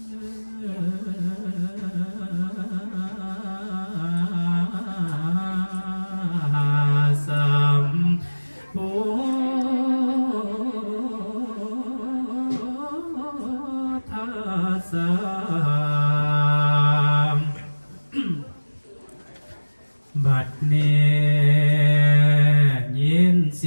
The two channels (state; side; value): inverted; both; correlation -1.00